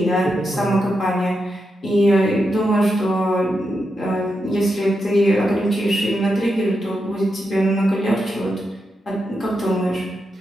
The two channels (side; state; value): both; normal; correlation 0.86